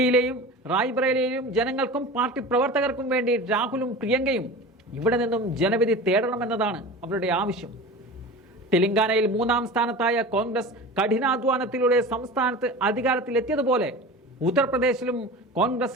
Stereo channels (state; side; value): normal; both; correlation 0.33